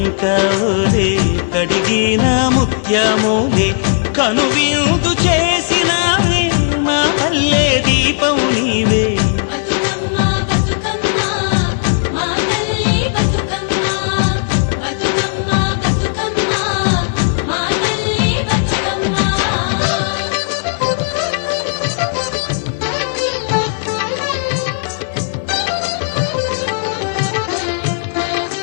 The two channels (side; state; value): right; silent; 56 dB below the other